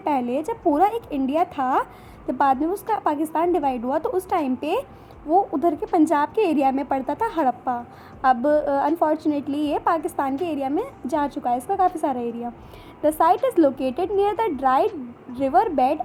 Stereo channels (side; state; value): both; identical; correlation 1.00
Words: जब पूरा एक इंडिया था, जब बाद में उसका पाकिस्तान डिवाइड हुआ तो उस टाइम पे वो उधर के पंजाब के एरिया में पड़ता था हड़प्पा। अब अनफॉर्चुनेटली ये पाकिस्तान के एरिया में जा चुका है, इसका काफ़ी सारा area. The site is located near the dried river bed